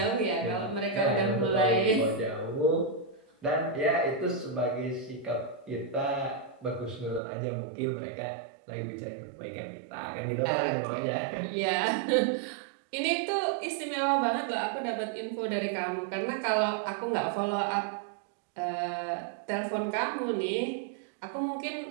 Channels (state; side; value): drops out; left; at 7.2 s